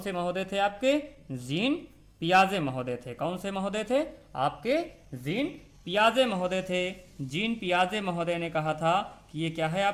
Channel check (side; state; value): both; identical; correlation 1.00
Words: महोदय थे आपके? जीन पियाजे महोदय थे। कौन से महोदय थे? आपके जीन पियाजे महोदय थे। जीन पियाजे महोदय ने कहा था कि ये क्या है